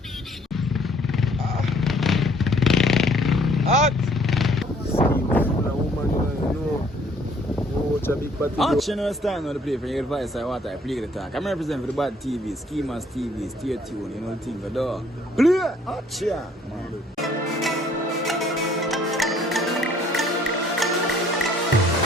Hot. Scheme a woman, you know. Oh, it's a big party. Hot, you know, stand on the play for your advice. I want to play the talk. I'm representing for the bad TV, Schemers TV, stay tuned, you know the thing, the door. Play! Hot, yeah, man.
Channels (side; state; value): both; normal; correlation 0.61